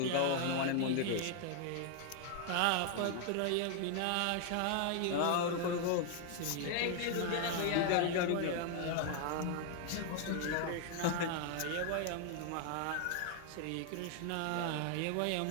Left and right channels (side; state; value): both; different; correlation 0.00